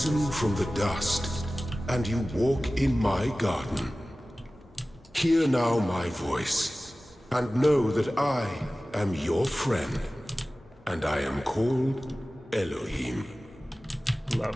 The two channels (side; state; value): both; normal; correlation 0.97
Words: from the dust, and you walk in my garden. Hear now my voice, and know that I am your friend, and I am called Elohim.